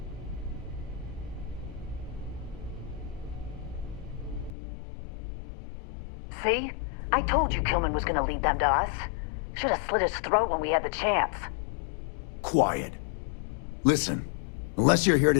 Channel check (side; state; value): right; drops out; at 4.5 s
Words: See? I told you Kilman was gonna lead them to us. Should have slit his throat when we had the chance. Quiet. Listen, unless you're here